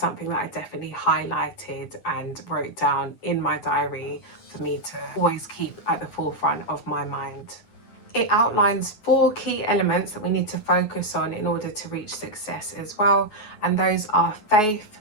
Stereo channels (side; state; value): right; late; 9.4 ms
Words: that I definitely highlighted and wrote down in my diary for me to always keep at the forefront of my mind. It outlines 4 key elements that we need to focus on in order to reach success as well, and those are faith,